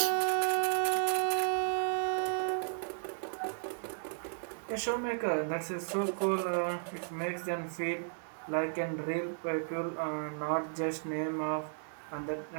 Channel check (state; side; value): silent; left; digital silence